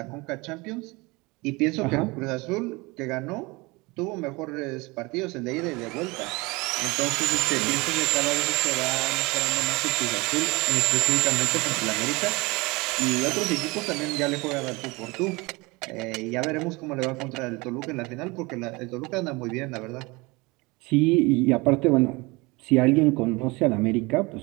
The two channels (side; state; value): left; quieter; 24.6 dB